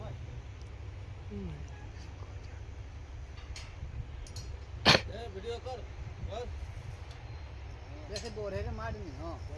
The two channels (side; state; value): both; identical; correlation 1.00